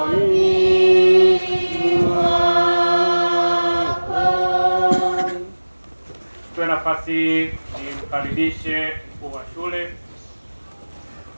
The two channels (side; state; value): both; inverted; correlation -1.00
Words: Nafasi nimkaribishe mkuu wa shule